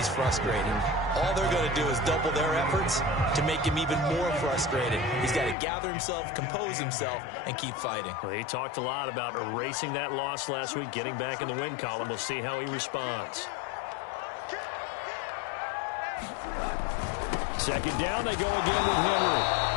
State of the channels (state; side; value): drops out; right; at 5.6 s